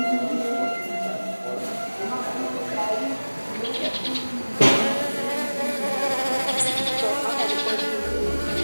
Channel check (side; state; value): both; inverted; correlation -1.00